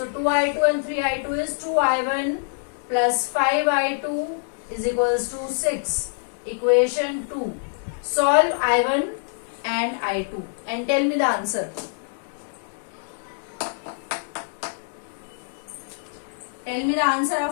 2I2 and 3I2 is 2I1 plus 5I2 is equals to 6. Equation 2. Solve I1 and I2 and tell me the answer. Tell me the answer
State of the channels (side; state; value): right; silent; 59 dB below the other